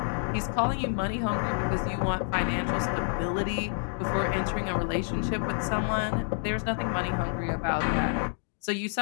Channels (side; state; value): right; silent; digital silence